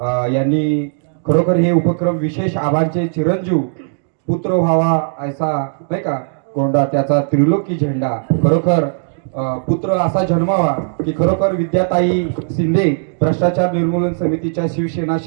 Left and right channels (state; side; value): silent; left; digital silence